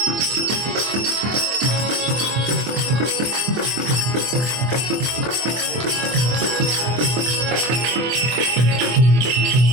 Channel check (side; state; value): left; late; 24 ms